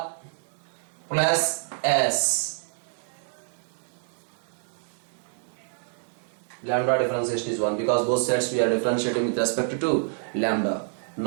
plus S. Lambda differentiation is 1 because both sides we are differentiating with respect to lambda.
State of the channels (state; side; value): silent; left; 60 dB below the other